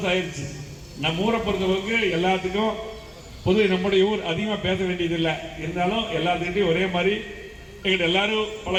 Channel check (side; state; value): both; identical; correlation 1.00